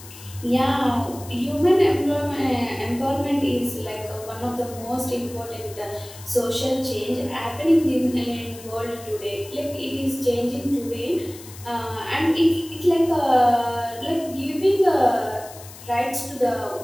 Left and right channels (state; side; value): noise; left; hiss, 17 dB below the sound